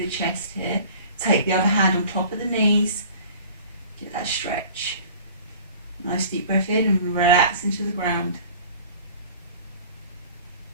chest here. Take the other hand on top of the knees. Get that stretch. Nice deep breath in and relax into the ground.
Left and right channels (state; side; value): inverted; both; correlation -0.45